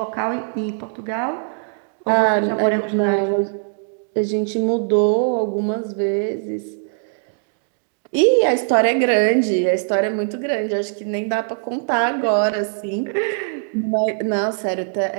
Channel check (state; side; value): silent; left; digital silence